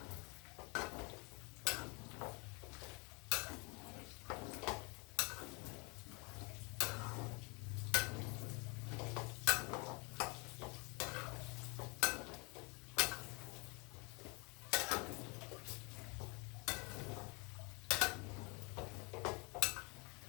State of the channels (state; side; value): quieter; right; 30.4 dB